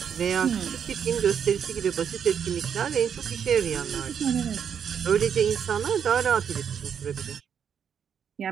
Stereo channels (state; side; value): quieter; left; 7.8 dB